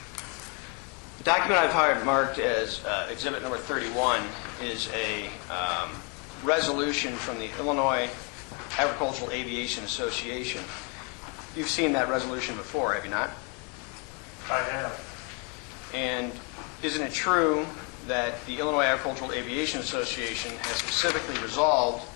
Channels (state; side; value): quieter; right; 34.5 dB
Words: The document I've marked as exhibit number 31 is a resolution from the Illinois Agricultural Aviation Association. You've seen that resolution before, have you not? I have. And isn't it true that the Illinois Agricultural Aviation Association has specifically resolved